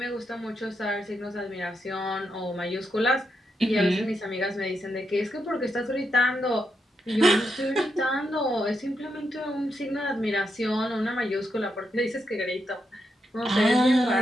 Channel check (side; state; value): both; normal; correlation 0.83